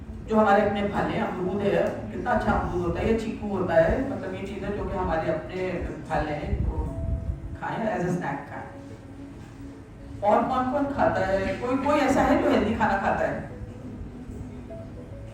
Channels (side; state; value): both; identical; correlation 1.00